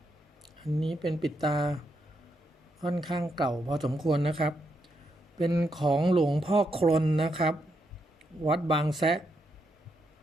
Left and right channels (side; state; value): both; normal; correlation 0.80